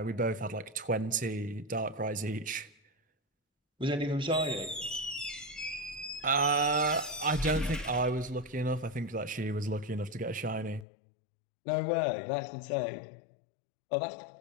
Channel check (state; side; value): drops out; right; at 10.9 s